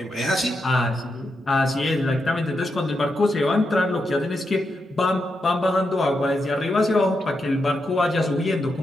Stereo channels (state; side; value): normal; both; correlation 0.85